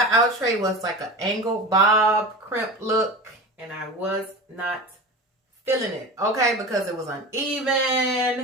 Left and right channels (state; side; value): normal; both; correlation 0.30